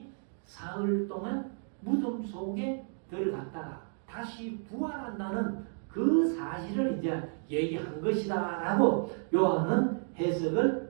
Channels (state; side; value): silent; left; 56 dB below the other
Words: 사흘 동안 무덤 속에 들어갔다가 다시 부활한다는 그 사실을 이제 얘기한 것이다 라고 요한은